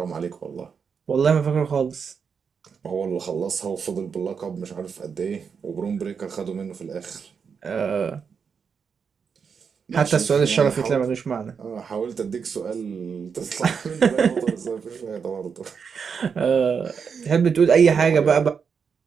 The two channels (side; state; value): left; quieter; 6.3 dB